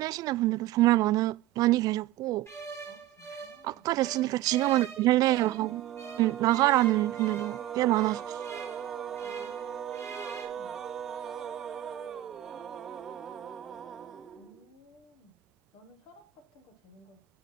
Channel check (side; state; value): left; quieter; 14.8 dB